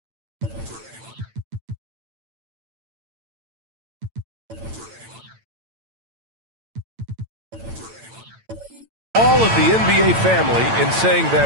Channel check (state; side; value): late; left; 8.9 ms